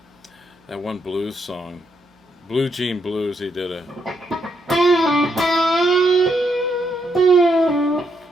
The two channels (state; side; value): normal; both; correlation 0.77